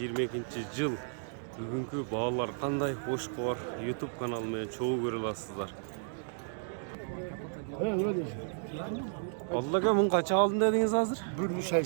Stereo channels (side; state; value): left; silent; digital silence